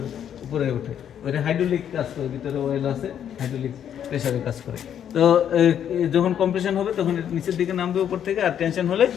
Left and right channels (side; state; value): right; quieter; 9.3 dB